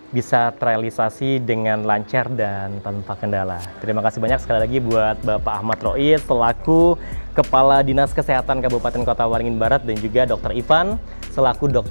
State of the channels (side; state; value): both; inverted; correlation -1.00